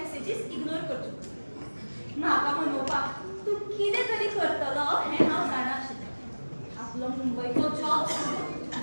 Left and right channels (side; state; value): both; inverted; correlation -1.00